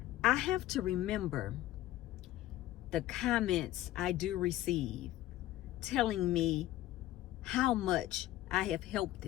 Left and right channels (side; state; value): right; quieter; 14.7 dB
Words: I have to remember the comments I do receive telling me how much I have helped